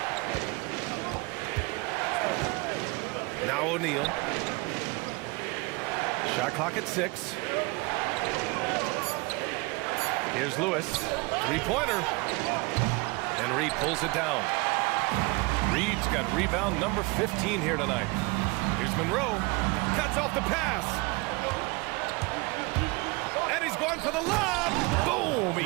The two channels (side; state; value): left; quieter; 26.2 dB